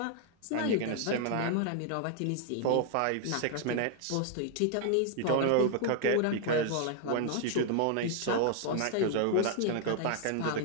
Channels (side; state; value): both; different; correlation 0.00